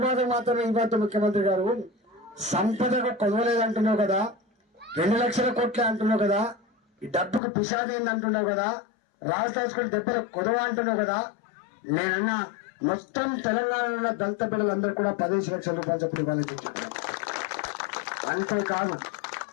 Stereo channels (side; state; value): right; drops out; at 7.4 s